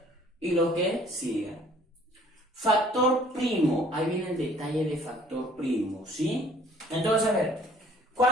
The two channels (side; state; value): both; normal; correlation 0.56